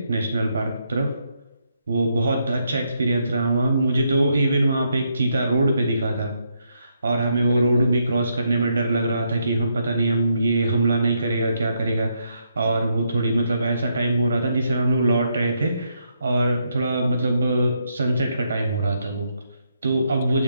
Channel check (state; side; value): inverted; both; correlation -0.78